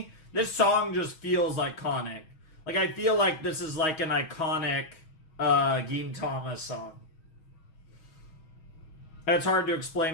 This song just feels iconic. Like, I feel like this is like an iconic, Gintama song. And it's hard to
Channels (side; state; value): right; late; 6.3 ms